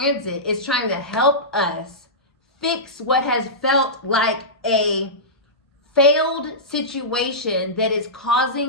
is trying to help us fix what has felt like a failed situation that is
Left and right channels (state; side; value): normal; both; correlation -0.16